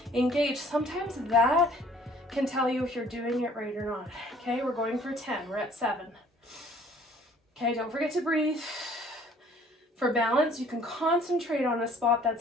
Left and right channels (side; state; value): both; normal; correlation 0.56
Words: engage, sometimes that can tell you if you're doing it right or not. Okay, we're going for 10, we're at 7. Okay, don't forget to breathe. For balance, you can concentrate on a spot that's